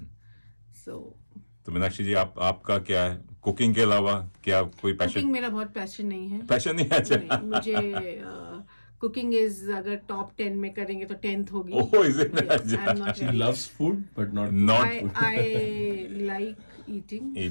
So तो मीनाक्षी जी आपका क्या है कुकिंग के अलावा, क्या कोई पैशन? cooking मेरा बहुत passion नहीं है. पैशन नहीं है? अच्छा। नहीं, मुझे कुकिंग इज अगर टॉप 10 में करेंगे तो 10th होगी. Oh, is it? Yes, I'm not She very. loves food but not Not I like eating.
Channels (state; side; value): inverted; both; correlation -1.00